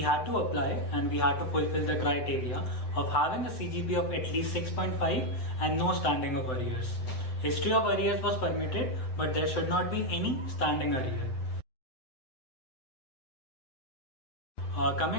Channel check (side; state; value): right; late; 7.8 ms